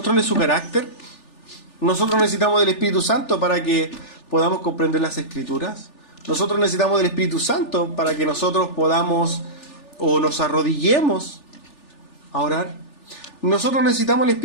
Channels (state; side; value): late; right; 3.4 ms